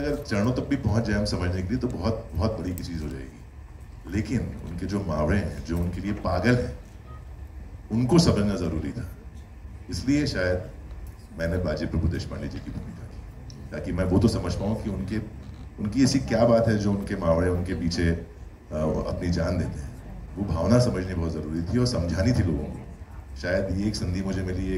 चरणों तक भी पहुंच जाए हम समझने के लिए तो बहुत बहुत बड़ी की चीज हो जाएगी। लेकिन उनके जो मावड़े हैं, जो उनके लिए पागल हैं, उनको समझना जरूरी था। इसलिए शायद मैंने बाजी प्रभु देशपांडे जी की भूमिका की, ताकि मैं वो तो समझ पाऊँ कि उनकी ऐसी क्या बात है जो उनके मावड़े उनके पीछे अपनी जान देते हैं। वो भावना समझनी बहुत ज़रूरी थी और समझानी थी लोगों को। शायद ये एक संधि मुझे मिली,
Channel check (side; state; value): both; identical; correlation 1.00